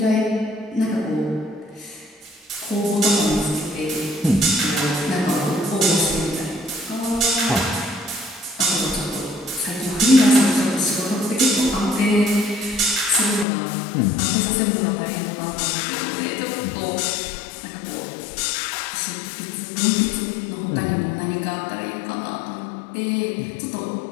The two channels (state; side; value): drops out; right; at 13.5 s